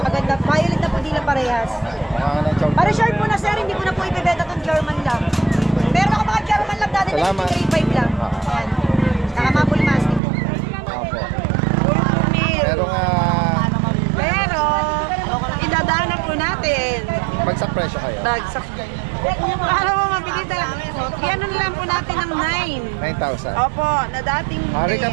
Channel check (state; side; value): drops out; left; at 10.2 s